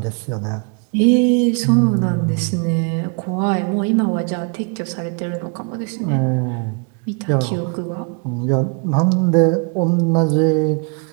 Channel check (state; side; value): quieter; left; 36.1 dB